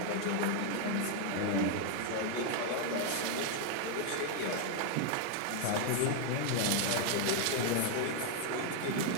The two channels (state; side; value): different; both; correlation 0.00